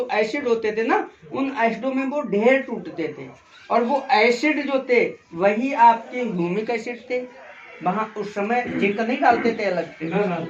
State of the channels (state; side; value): identical; both; correlation 1.00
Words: एसिड होते थे ना, उन एसिडों में वो ढेर टूटते थे। और वो एसिड जो थे वही आपके ह्यूमिक एसिड थे। वहाँ उस समय जिंक नहीं डालते थे अलग से,